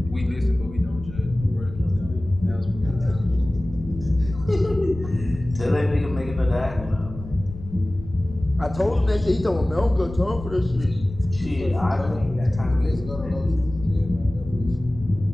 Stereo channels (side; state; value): left; noise; rumble, 12 dB below the sound